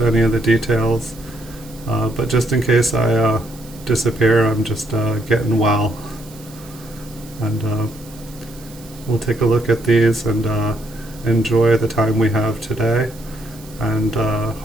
any of the details. But just in case I disappear, I'm just getting well. And we'll take a look at these and enjoy the time we have today, and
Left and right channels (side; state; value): right; noise; hiss, 21 dB below the sound